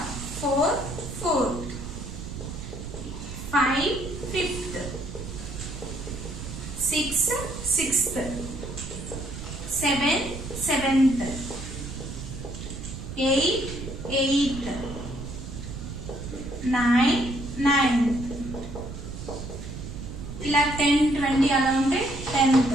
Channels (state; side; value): noise; right; rumble, 9 dB below the sound